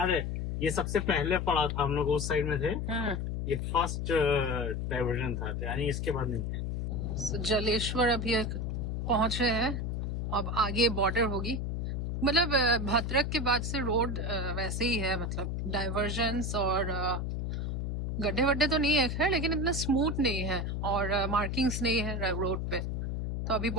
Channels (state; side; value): noise; left; hum, 1 dB below the sound